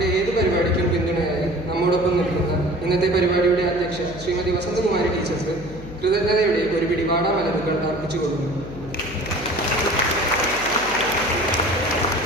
ഏത് പരിപാടിക്കും പിന്തുണയായി നമ്മോടൊപ്പം നിൽക്കുന്ന ഇന്നത്തെ പരിപാടിയുടെ അധ്യക്ഷ ശ്രീമതി വസന്തകുമാരി ടീച്ചർക്ക് കൃതജ്ഞതയുടെ ഒരു പിടി വാടാമലരുകൾ അർപ്പിച്ചു കൊടുക്കുന്നു.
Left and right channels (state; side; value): noise; left; hum, 14 dB below the sound